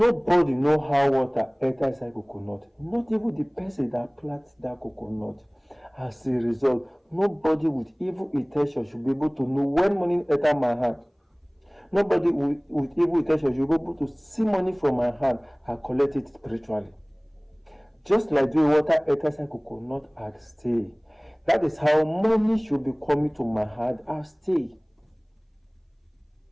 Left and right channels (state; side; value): identical; both; correlation 1.00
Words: know how water enter inside coconut, not even the person that plants that coconut. As a result, nobody with evil intention should be able to know when money enter my hand. Nobody with evil intention should be able to see money from my hand and collect it spiritually. Just like the water enters inside coconut and stay. That is how money should be coming to my hand and stay.